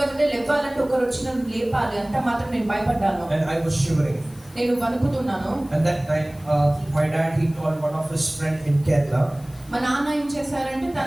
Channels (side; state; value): left; noise; hiss, 25 dB below the sound